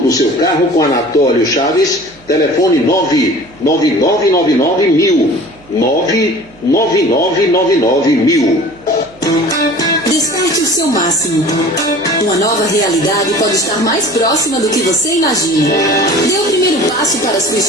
do seu carro com Anatólio Chaves. Telefone 99999 99999. Desperte o seu máximo. Uma nova realidade pode estar mais próxima do que você imagina. Dê o primeiro passo para a sua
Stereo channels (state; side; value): noise; right; hum, 26 dB below the sound